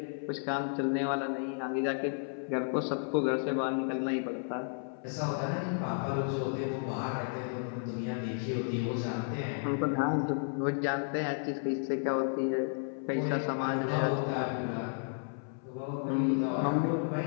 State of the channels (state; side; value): silent; right; 56 dB below the other